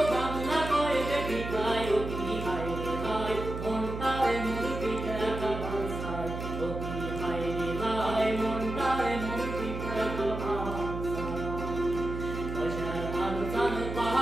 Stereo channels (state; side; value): noise; right; hum, 6 dB below the sound